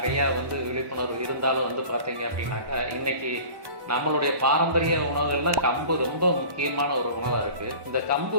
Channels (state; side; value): late; left; 1.1 ms